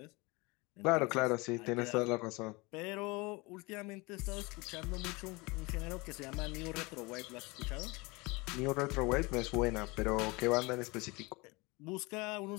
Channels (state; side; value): quieter; right; 25.2 dB